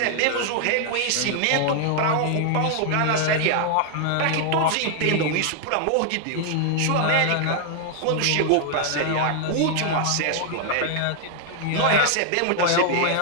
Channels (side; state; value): both; different; correlation 0.00